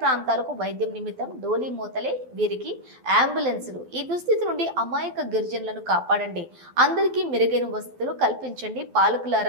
ప్రాంతాలకు వైద్యం నిమిత్తం డోలీ మోతలే వీరికి అంబులెన్సులు. ఈ దుస్థితి నుండి అమాయక గిరిజనులను కాపాడండి, అందరికీ మెరుగైన వసతులు కల్పించండి.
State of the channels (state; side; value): late; left; 12 ms